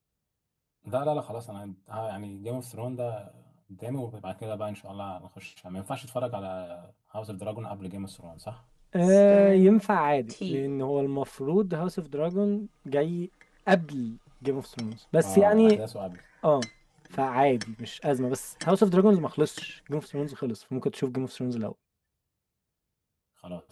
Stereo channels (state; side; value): identical; both; correlation 1.00